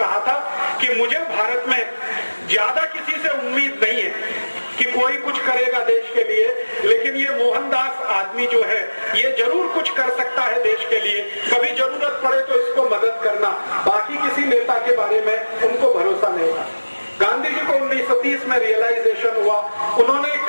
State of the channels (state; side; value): inverted; both; correlation -1.00